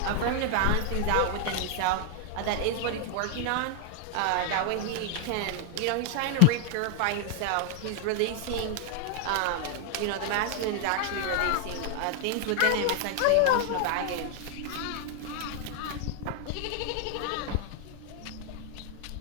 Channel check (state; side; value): different; both; correlation 0.00